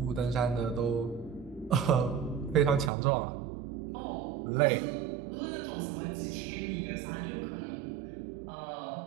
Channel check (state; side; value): drops out; left; at 2.9 s